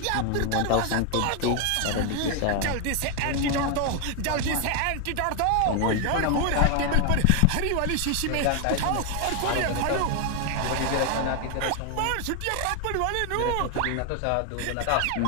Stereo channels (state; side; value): different; both; correlation 0.00